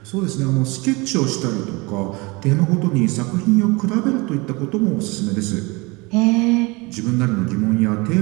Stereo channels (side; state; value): left; quieter; 25.7 dB